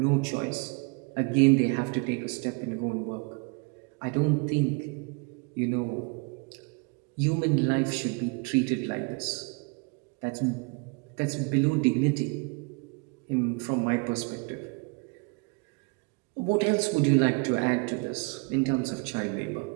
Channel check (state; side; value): quieter; left; 32.1 dB